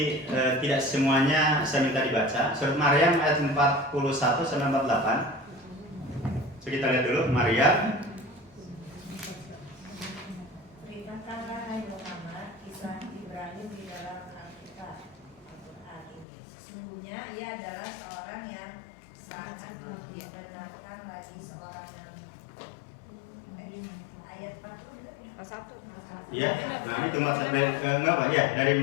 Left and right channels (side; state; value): right; drops out; at 16.2 s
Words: tidak semuanya saya minta dibaca. Surat Maryam ayat 41 sampai 48. So, kita lihat dulu Maryam. Beritakanlah hai Muhammad kisah Ibrahim di dalam Alkitab Al-Quran ini. Sesungguhnya ia adalah seorang yang sangat membenarkan lagi seorang nabi. Ayat 40 juga ya? 1. Iya. Nah, ini cuma dari enggak Pak? Ya,